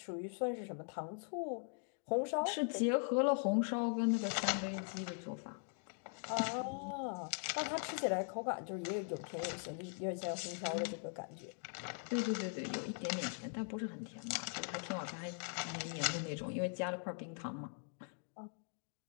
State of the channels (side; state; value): right; silent; 50 dB below the other